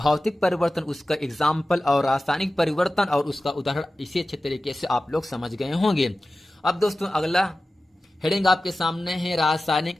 परिवर्तन, उसका एग्जाम्पल और रासायनिक परिवर्तन और उसका उदाहरण इसी अच्छे तरीके से आप लोग समझ गए होंगे। अब दोस्तों अगला हेडिंग आपके सामने है रासायनिक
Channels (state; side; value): normal; both; correlation 0.95